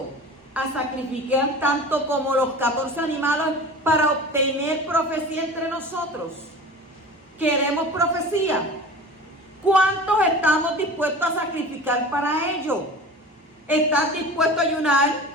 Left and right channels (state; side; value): normal; both; correlation 0.37